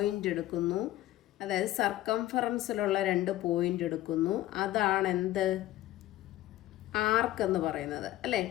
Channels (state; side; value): quieter; right; 15.0 dB